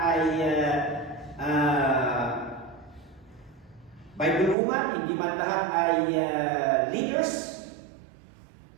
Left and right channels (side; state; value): left; drops out; at 4.5 s